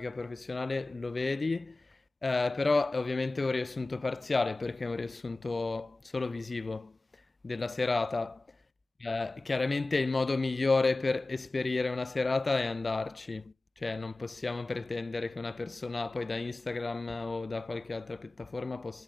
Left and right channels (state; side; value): quieter; right; 3.1 dB